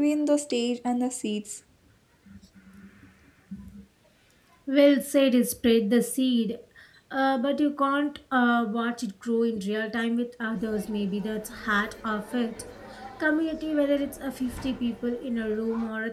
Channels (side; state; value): both; identical; correlation 1.00